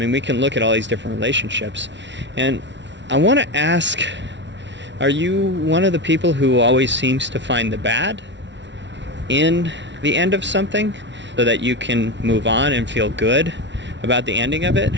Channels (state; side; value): late; left; 0.52 ms